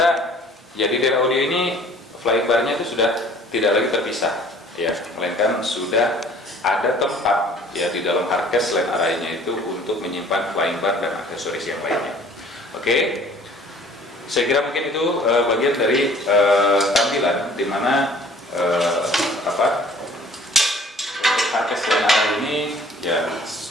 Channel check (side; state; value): both; normal; correlation 0.53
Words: ya, di Dear Audio ini flying bar-nya itu sudah tidak lagi terpisah, ya, melainkan sudah ada tempat, ya, di dalam hardcase line array-nya itu untuk menyimpan flying bar dan aksesoris yang lainnya. Oke. Saya kira mungkin itu bagian dari tampilan di mana hardcase line array ini, ya,